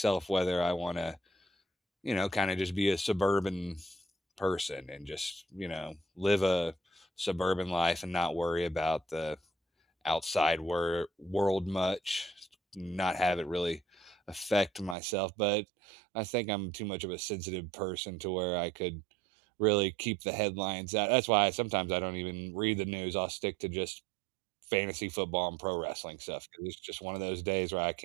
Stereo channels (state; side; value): drops out; left; at 15.0 s